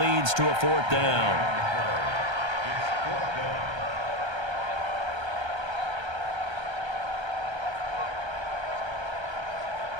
to a 4th down.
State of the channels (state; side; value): late; left; 1.3 ms